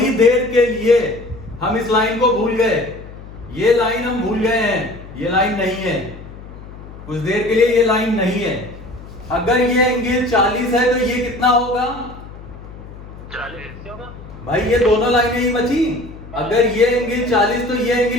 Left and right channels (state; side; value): noise; left; hum, 16 dB below the sound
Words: देर के लिए हम इस लाइन को भूल गए, ये लाइन हम भूल गए हैं, ये लाइन नहीं है, कुछ देर के लिए ये लाइन नहीं है। अगर ये एंगल 40 है तो ये कितना होगा? 40 होगा। भाई ये दोनों लाइनें ही बची, अगर ये एंगल 40 तो ये